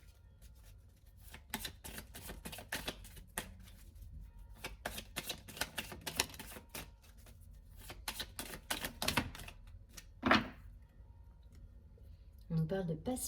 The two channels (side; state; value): both; identical; correlation 1.00